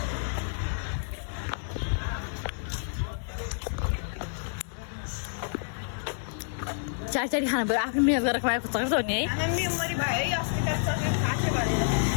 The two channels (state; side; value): silent; right; 59 dB below the other